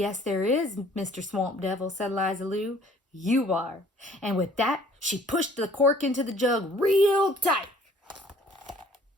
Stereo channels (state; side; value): normal; both; correlation 0.56